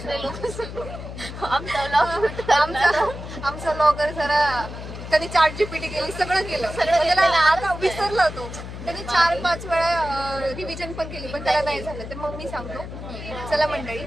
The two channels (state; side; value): noise; left; hum, 10 dB below the sound